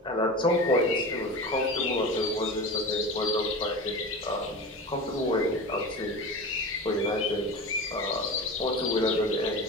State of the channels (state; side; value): normal; both; correlation 0.30